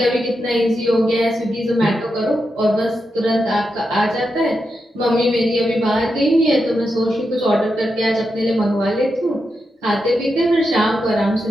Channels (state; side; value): normal; both; correlation 0.86